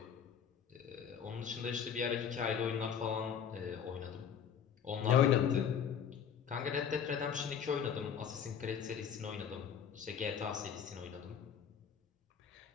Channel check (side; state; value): right; quieter; 7.8 dB